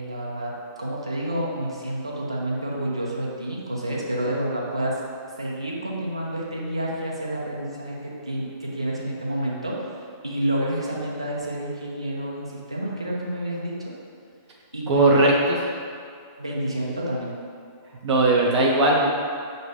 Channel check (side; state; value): both; inverted; correlation -0.49